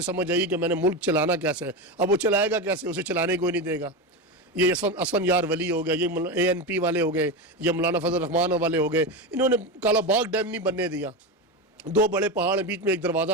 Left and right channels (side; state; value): both; normal; correlation 0.17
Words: سمجھ آئی کہ میں نے ملک چلانا کیسے ہے۔ اب وہ چلائے گا کیسے؟ اسے چلانے کوئی نہیں دے گا۔ یہ اسفن یار ولی ہو گیا، یہ ANP والے ہو گئے، یہ مولانا فضل الرحمان والے ہو گئے، انہوں نے کالا باغ ڈیم نہیں بننے دیا، 2 بڑے پہاڑ ہیں، بیچ میں ایک دروازہ